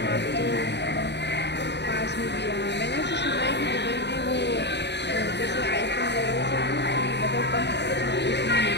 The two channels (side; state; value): right; late; 0.50 ms